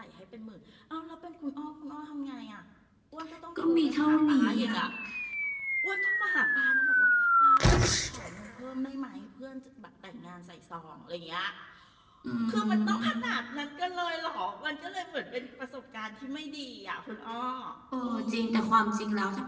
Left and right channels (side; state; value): both; identical; correlation 1.00